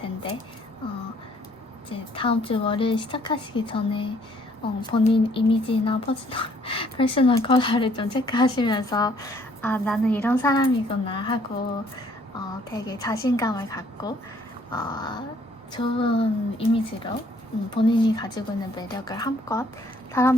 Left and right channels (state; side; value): normal; both; correlation 0.63